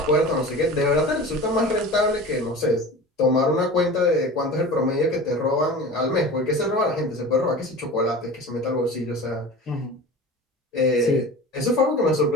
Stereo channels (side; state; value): both; normal; correlation 0.35